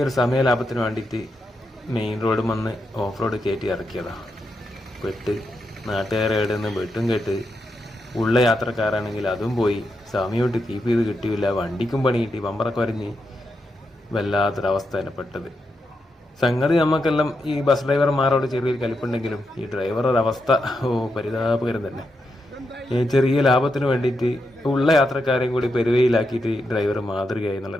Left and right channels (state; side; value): normal; both; correlation 0.84